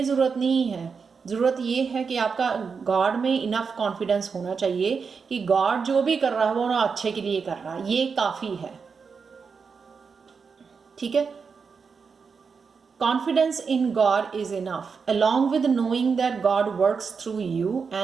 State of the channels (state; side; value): quieter; left; 5.5 dB